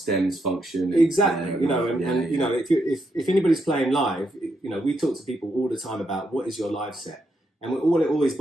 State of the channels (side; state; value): both; normal; correlation 0.80